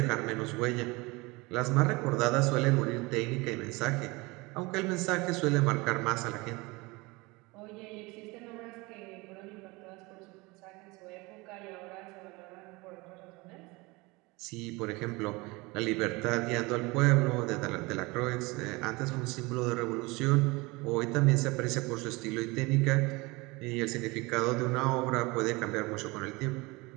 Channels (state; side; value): quieter; left; 24.2 dB